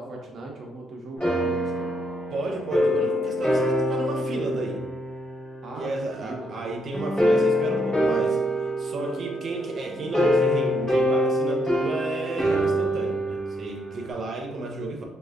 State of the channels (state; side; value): normal; both; correlation 0.76